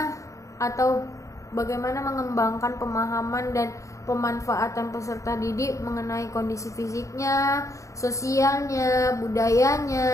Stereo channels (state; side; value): late; right; 0.15 ms